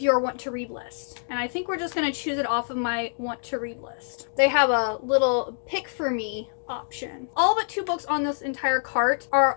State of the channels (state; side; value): silent; right; digital silence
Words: your want to read list. And I think we're just going to choose it off of my want to read list. They have a little pick for me option. All but 2 books on this entire cart are